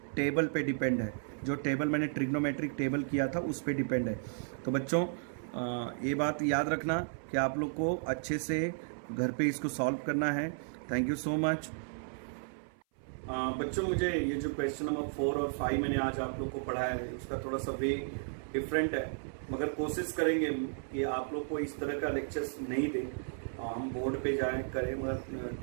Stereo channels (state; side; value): silent; left; 55 dB below the other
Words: टेबल पे डिपेंड है, जो टेबल मैंने ट्रिग्नोमेट्रिक टेबल किया था उस पे डिपेंड है। तो बच्चों ये बात याद रखना कि आप लोग को अच्छे से घर पे इसको सॉल्व करना है। Thank you so much. बच्चों मुझे ये जो क्वेश्चन नंबर 4 और 5 मैंने आज आप लोग को पढ़ाया है उसका थोड़ा सा वे डिफरेंट है, मगर कोशिश करेंगे कि आप लोग को इस तरह का लेक्चर्स नहीं दें, हम बोर्ड पे जाएं करें, मगर